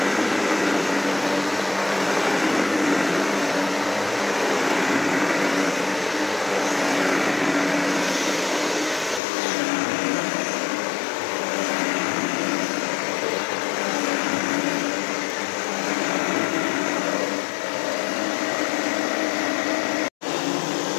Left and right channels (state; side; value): drops out; right; at 9.2 s